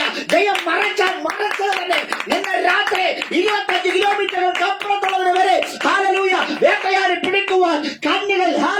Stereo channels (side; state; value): both; identical; correlation 1.00